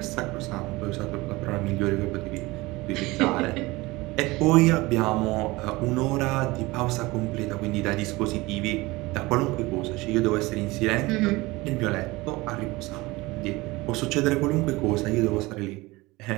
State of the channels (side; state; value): left; quieter; 21.5 dB